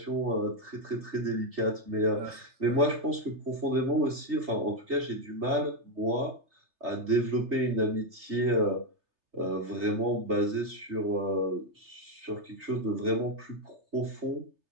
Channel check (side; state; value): left; late; 3.3 ms